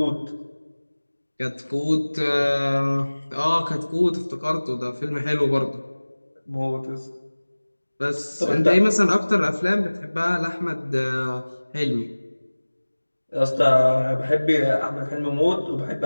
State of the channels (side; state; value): both; inverted; correlation -1.00